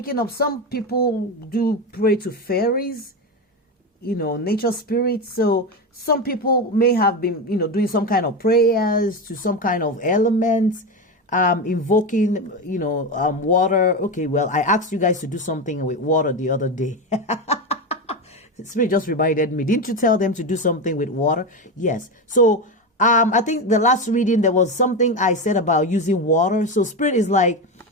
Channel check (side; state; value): both; normal; correlation 0.16